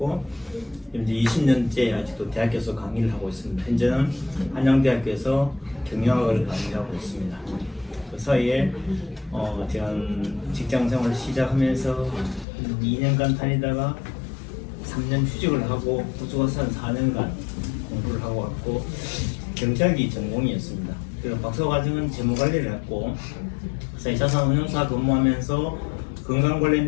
이제 20년째 아직도 대학교에서 강의를 하고 있습니다. 현재는 한양대학교에서 경영학을 강의하고 있습니다. 그 사이에 제가 직장생활을 시작하면서 2년간 다니다가 3년 휴직을 하고 호주에서 한 4년간 공부를 하고 왔고 경제학이 전공이었습니다. 그리고 박사과정은 재무관리를 했고 자산운용사 근무하면서 건강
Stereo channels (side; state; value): right; drops out; at 12.5 s